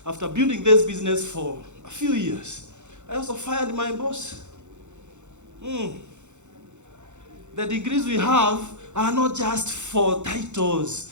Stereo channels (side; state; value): left; late; 0.84 ms